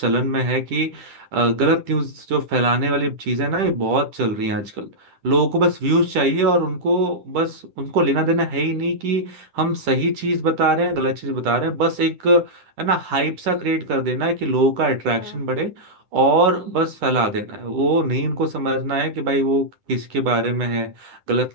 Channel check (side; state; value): left; late; 10 ms